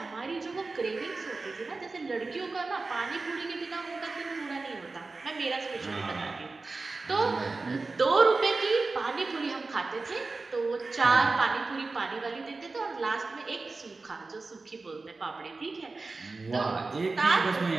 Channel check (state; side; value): quieter; left; 3.7 dB